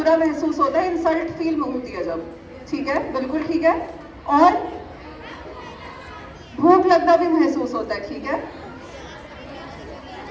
महसूस होता है, इंसल्ट फील होती है जब, ठीक है, बिल्कुल ठीक है। और भूख लगना भी महसूस होता है, ठीक है।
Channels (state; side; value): identical; both; correlation 1.00